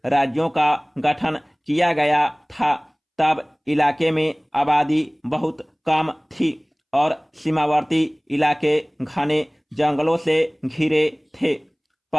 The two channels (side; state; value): both; identical; correlation 1.00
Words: राज्यों का गठन किया गया था, तब इलाके में आबादी बहुत कम थी और सीमावर्ती इलाके घने जंगलों से घिरे थे।